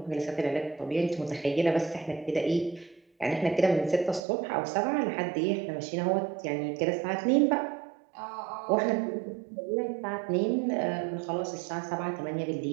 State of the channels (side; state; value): left; drops out; at 4.2 s